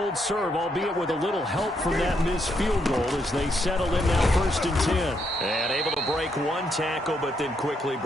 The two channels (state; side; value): normal; both; correlation 0.77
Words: serve, albeit with a little help from that missed field goal as they settle in now 1st and 10. And able to break one tackle, but then quickly